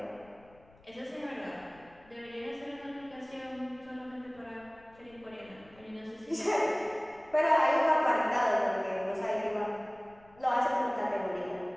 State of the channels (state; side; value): noise; left; rumble, 27 dB below the sound